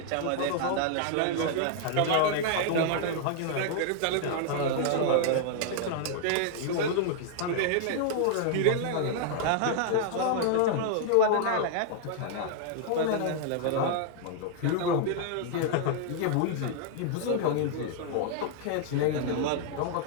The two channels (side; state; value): both; different; correlation 0.00